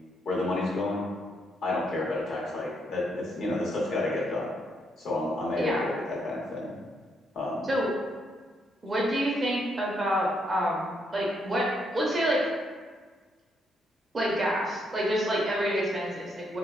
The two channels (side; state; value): both; normal; correlation 0.76